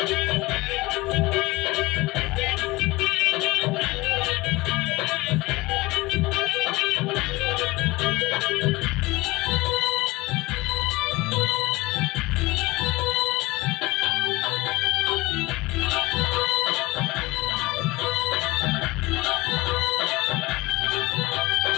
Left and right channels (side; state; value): right; quieter; 21.3 dB